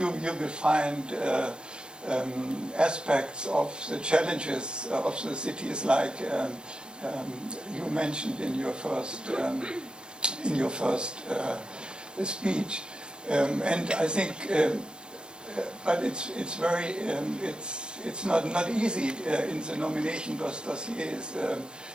will find aspects of the challenges of the cities, like you mentioned in your first speech, and I think, but it's very it's not easy in the nomination dossiers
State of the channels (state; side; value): late; left; 0.049 ms